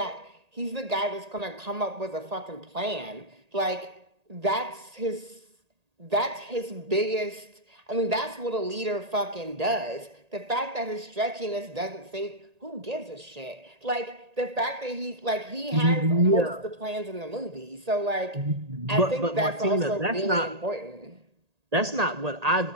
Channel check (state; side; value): late; left; 1.8 ms